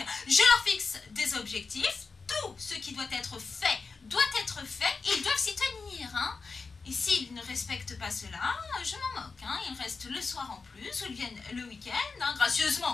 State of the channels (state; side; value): quieter; right; 4.5 dB